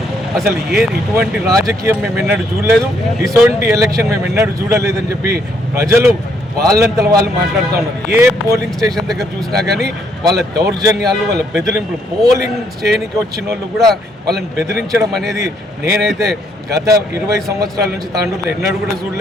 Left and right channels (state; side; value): normal; both; correlation 0.71